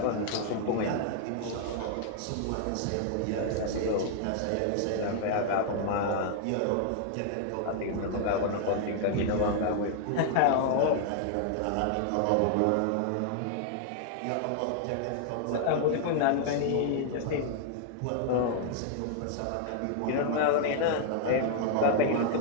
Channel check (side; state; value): both; different; correlation 0.00